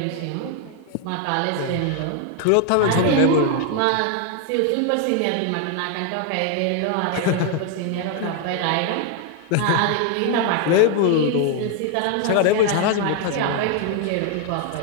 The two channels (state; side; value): different; both; correlation 0.00